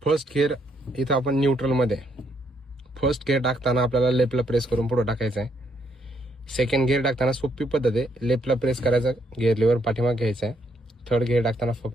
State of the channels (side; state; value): both; normal; correlation 0.73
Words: फर्स्ट गिअर इथं आपण न्यूट्रल मध्ये फर्स्ट गिअर टाकताना आपल्याला लेफ्टला प्रेस करून पुढे टाकायचं आहे. सेकंड गिअर टाकताना सोपी पद्धत आहे, लेफ्टला प्रेस करायचा, गिअर लिव्हर पाठीमागे घ्यायचा आहे. थर्ड गिअर टाकताना